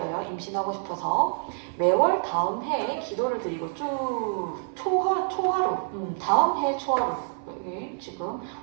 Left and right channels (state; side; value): silent; left; 58 dB below the other